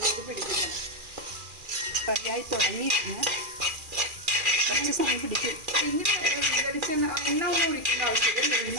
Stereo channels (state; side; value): late; left; 2.4 ms